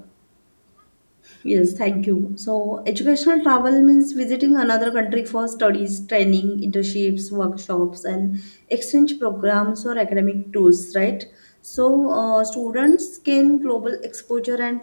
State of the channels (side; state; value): both; inverted; correlation -1.00